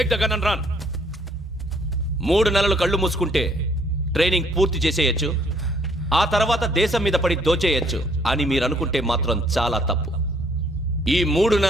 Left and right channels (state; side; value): normal; both; correlation 0.64